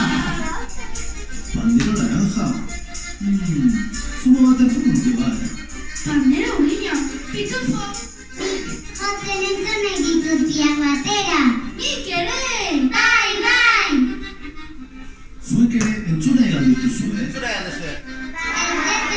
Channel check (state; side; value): identical; both; correlation 1.00